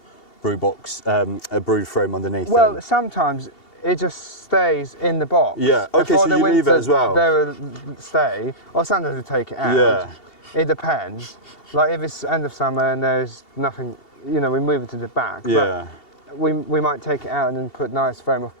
brood box, a brood frame underneath? Well, sometimes it just stays in the box. Yeah. Okay. So you leave it as well. They will stay, or sometimes we take it out. Yeah. It depends. Like if it's end of summer and there's nothing, you know, we move it to the back. Yeah. But we might take it out and then put nice frame of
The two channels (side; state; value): right; late; 2.7 ms